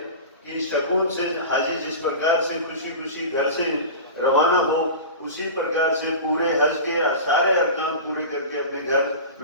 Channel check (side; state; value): both; inverted; correlation -0.31